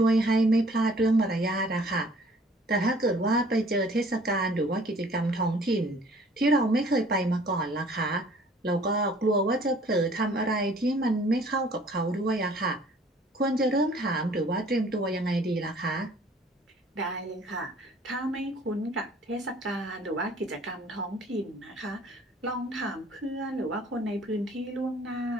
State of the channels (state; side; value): normal; both; correlation 0.55